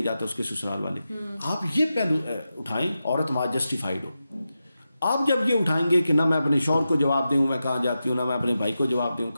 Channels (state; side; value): inverted; both; correlation -0.91